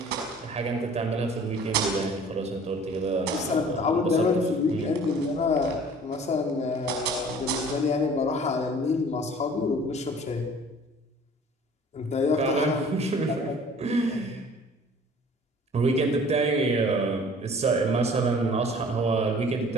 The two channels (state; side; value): normal; both; correlation 0.49